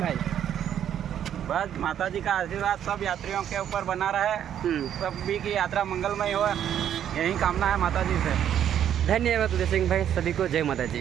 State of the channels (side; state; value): left; quieter; 9.9 dB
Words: भाई बस माता जी का आशीर्वाद सब यात्रियों के ऊपर बना रहे, सभी की यात्रा मंगलमय हो, यही कामना है माता जी से। धन्यवाद जय सिंह भाई। सभी को जय माता जी।